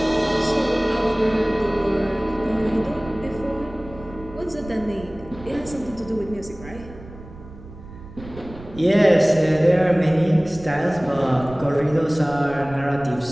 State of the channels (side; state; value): right; noise; rumble, 17 dB below the sound